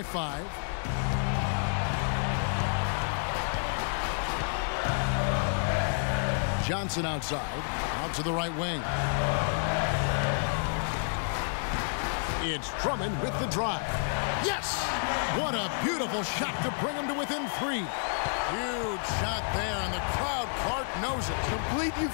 5. Johnson outside, out to the right wing. It's Drummond with the drive. Yes! What a beautiful shot to bring him to within 3. Huge shot there, and the crowd, Clark, knows it. Complete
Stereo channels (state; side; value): silent; right; digital silence